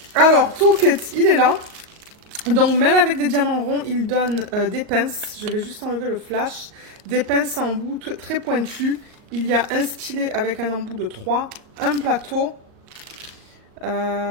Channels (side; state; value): left; late; 38 ms